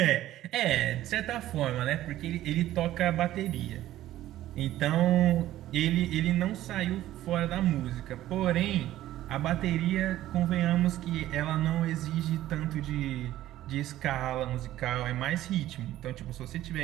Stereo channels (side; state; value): left; quieter; 14.1 dB